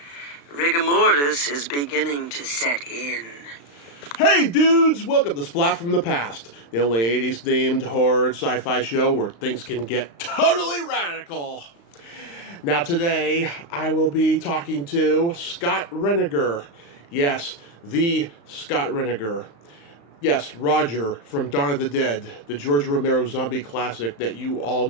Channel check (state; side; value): late; right; 35 ms